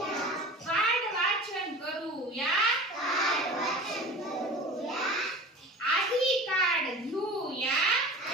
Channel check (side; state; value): both; normal; correlation 0.38